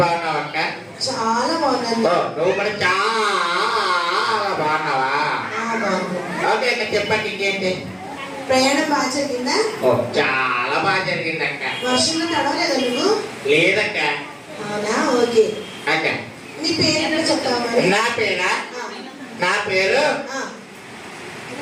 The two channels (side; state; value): both; identical; correlation 1.00